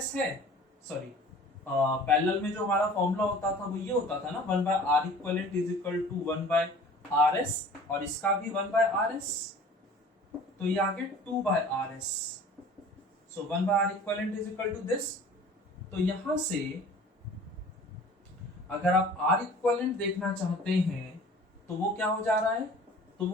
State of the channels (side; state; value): both; normal; correlation 0.46